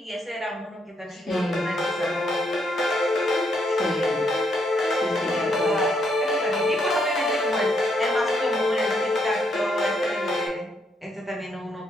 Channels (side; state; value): both; normal; correlation 0.75